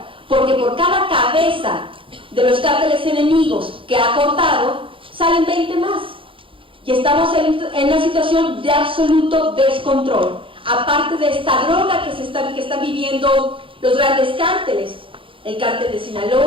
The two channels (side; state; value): left; late; 0.25 ms